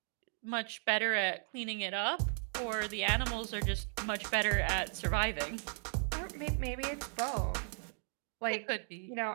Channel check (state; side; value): silent; left; 54 dB below the other